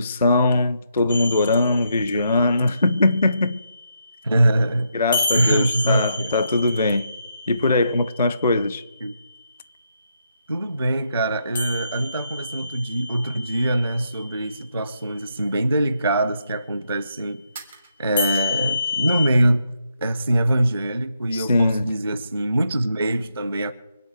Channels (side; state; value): both; inverted; correlation -0.79